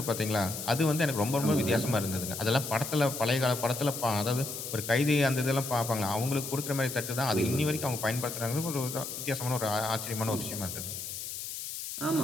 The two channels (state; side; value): noise; left; hiss, 7 dB below the sound